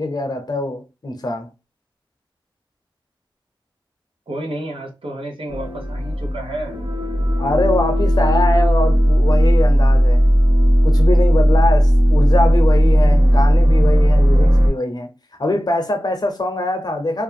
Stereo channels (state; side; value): normal; both; correlation 0.94